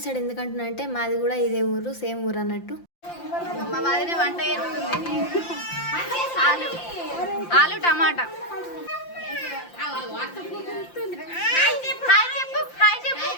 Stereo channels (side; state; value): right; late; 5.8 ms